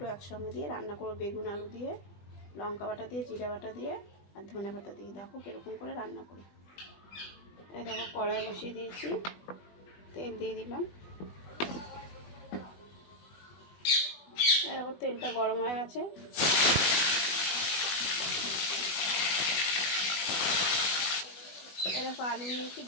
একসঙ্গে দিয়ে রান্না করো। বেগুন আলু দিয়ে, লঙ্কা বাটা দিয়ে, জিরা বাটা দিয়ে, আর ধনে বাটা দিয়ে। দেখো কীরকম করে রান্না করি। এই দেখো কড়াই বসিয়ে দিয়েছি, তেল দিয়ে দিলাম। দেখো তেলটা গরম হয়ে গেছে। এরকম আলু নিয়েছি,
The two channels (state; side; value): late; right; 20 ms